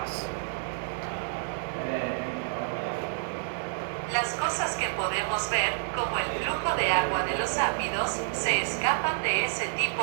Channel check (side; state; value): left; silent; 59 dB below the other